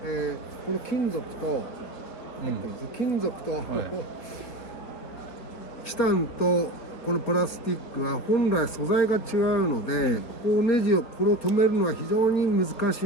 この金属と、金属と、チタンとこのプラスチックは本来素材が違うので、ここをネジをこれを止めるのは非常に難し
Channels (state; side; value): late; right; 4.5 ms